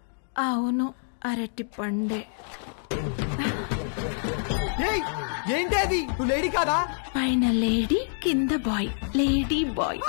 అవును, అరటి పండే. ఏంటి అది? నువ్వు లేడీ కాదా? పైన లేడీ, కింద బాయ్, లేడీ బాయ్.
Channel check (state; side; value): silent; right; digital silence